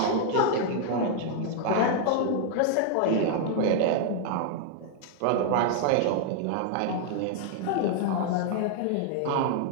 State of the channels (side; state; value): both; different; correlation 0.00